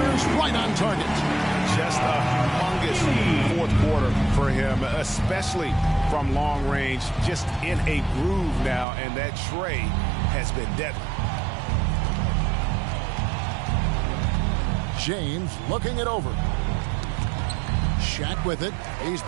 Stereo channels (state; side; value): drops out; left; at 8.8 s